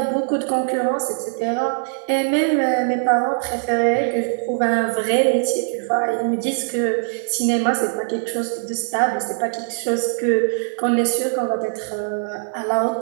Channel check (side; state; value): left; silent; 56 dB below the other